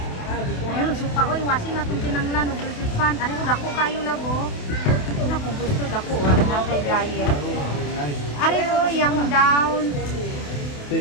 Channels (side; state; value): right; late; 28 ms